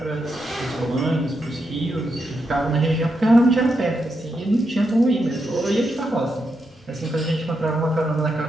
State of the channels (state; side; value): normal; both; correlation 0.84